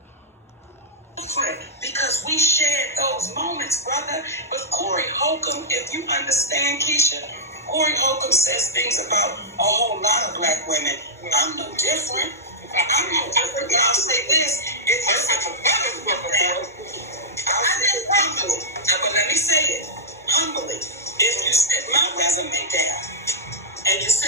Because we shared those moments, brother. With Corey Holcomb, if you understand, Keisha, Corey Holcomb says things about a whole lot of black women. I'm no different. I'm no different, but I'll say this. If you're such a better woman, I'll say it humbly. But let me say it humbly. If you set my resume down and you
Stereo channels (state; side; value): normal; both; correlation -0.09